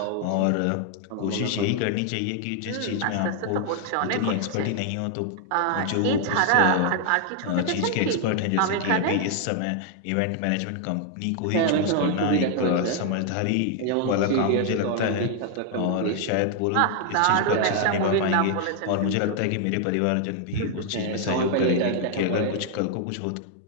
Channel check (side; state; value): both; different; correlation 0.00